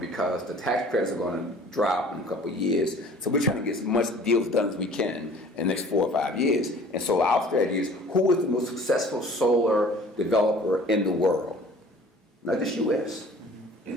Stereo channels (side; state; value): both; normal; correlation 0.49